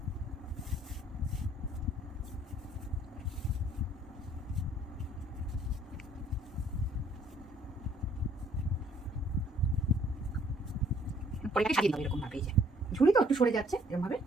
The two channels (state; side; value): normal; both; correlation 0.61